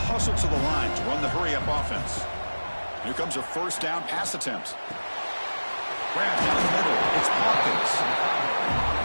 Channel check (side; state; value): both; inverted; correlation -1.00